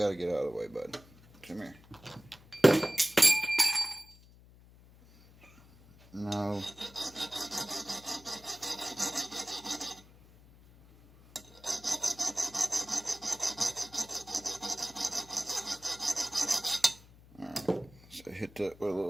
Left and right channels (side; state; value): left; noise; hum, 24 dB below the sound